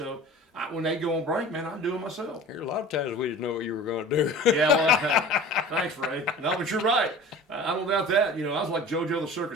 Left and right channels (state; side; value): normal; both; correlation 0.40